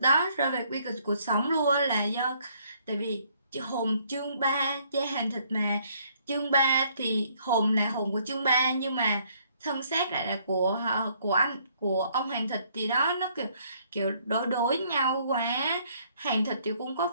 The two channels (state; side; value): inverted; both; correlation -0.66